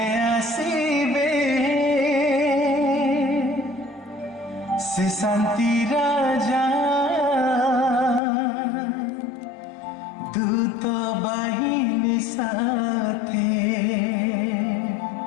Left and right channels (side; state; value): right; drops out; at 8.2 s